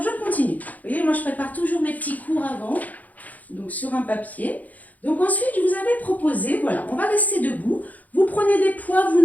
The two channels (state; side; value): late; right; 0.078 ms